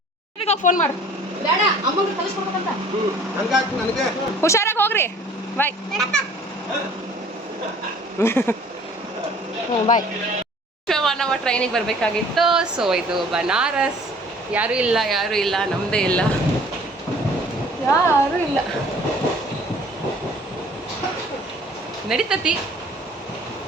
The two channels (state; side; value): normal; both; correlation 0.52